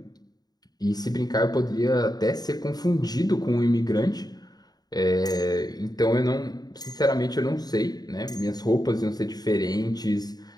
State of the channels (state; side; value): late; right; 0.19 ms